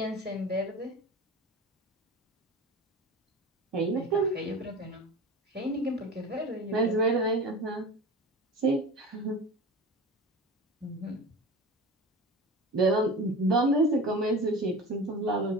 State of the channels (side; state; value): both; normal; correlation 0.32